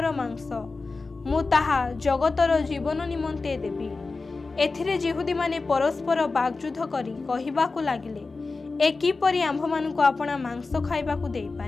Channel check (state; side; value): quieter; right; 3.9 dB